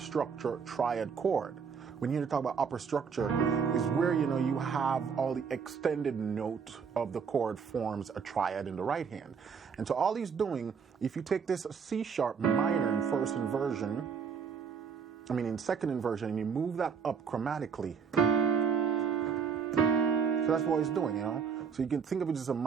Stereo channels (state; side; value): quieter; left; 6.5 dB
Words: triad chord. When you talk about upper structure, is where, you know, you have all the extended note of the chord forms a triad in the right hand. And so all he's doing, if you take this C sharp minor in first inversion, in second inversion, and you move that up chromatically. So that's what he's doing, you know. So you can think of it as a